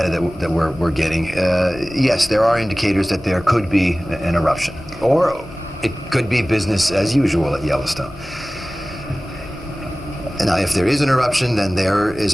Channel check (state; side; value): normal; both; correlation 0.98